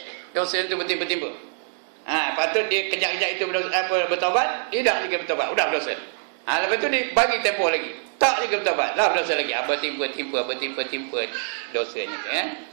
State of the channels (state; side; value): silent; left; digital silence